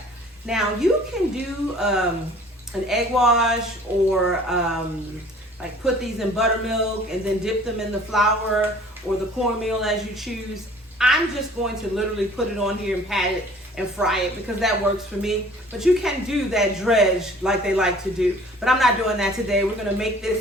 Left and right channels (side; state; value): both; normal; correlation 0.51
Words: Now you can do an egg wash or like put these in buttermilk and then dip them in the flour or the cornmeal as you choose. I'm just going to literally put it on here and pat it and fry it because that works for me. But you can do that dredge like they like to do. But I'm not doing that today. We're gonna make